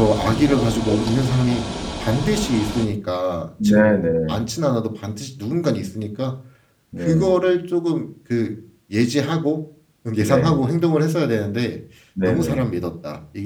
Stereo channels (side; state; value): both; identical; correlation 1.00